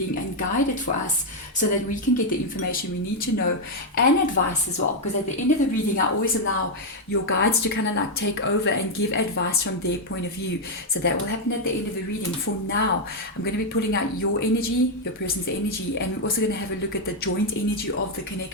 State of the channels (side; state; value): both; normal; correlation 0.01